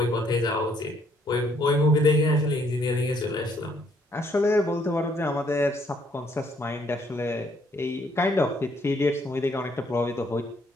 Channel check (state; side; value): normal; both; correlation 0.68